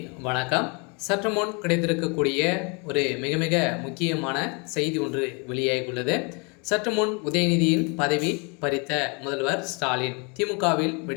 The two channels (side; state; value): right; quieter; 32.4 dB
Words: வணக்கம். சற்று முன் கிடைத்திருக்கக்கூடிய ஒரு மிக மிக முக்கியமான செய்தி ஒன்று வெளியாகியுள்ளது. சற்று முன் உதயநிதியின் பதவி பறித்த முதல்வர் ஸ்டாலின் திமுகவில்